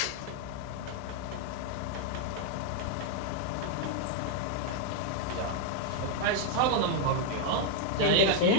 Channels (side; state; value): both; different; correlation 0.00